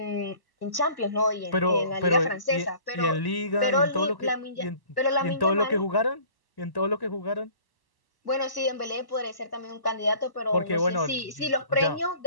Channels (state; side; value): late; right; 1.0 ms